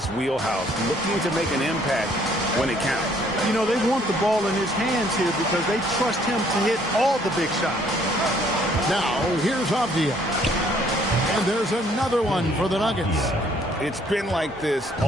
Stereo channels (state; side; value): normal; both; correlation 0.63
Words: wheelhouse, looking to make an impact when it counts. You know, they want the ball in his hands here because they trust him to hit all the big shots. Now, here's Avdia. And there's another one for the Nuggets. It's been like this